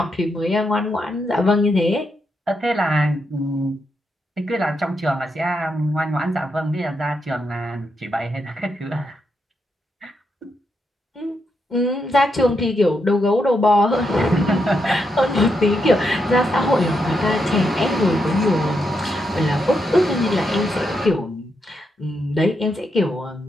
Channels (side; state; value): both; normal; correlation 0.82